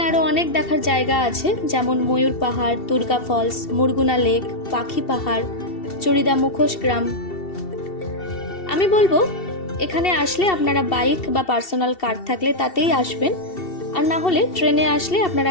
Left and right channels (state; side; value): late; right; 2.7 ms